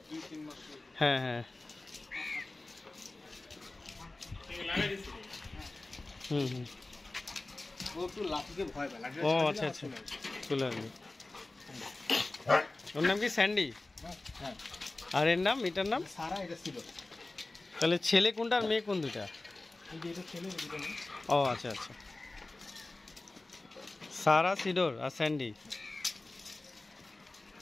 হ্যাঁ হ্যাঁ ও আচ্ছা আচ্ছা চলে আসবে। ওর নাম কি স্যান্ডি? আর এর নাম, এটার নাম সারা, এটা সিডর। তাহলে ছেলে কোনটা আর মেয়ে কোন দুটা? ও আচ্ছা আচ্ছা, সারা, সিডর আর স্যান্ডি।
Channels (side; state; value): right; quieter; 3.0 dB